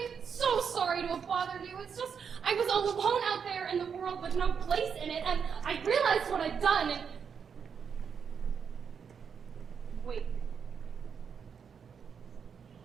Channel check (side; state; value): left; quieter; 6.7 dB